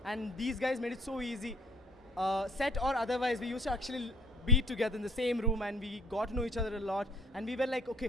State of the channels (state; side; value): normal; both; correlation 0.59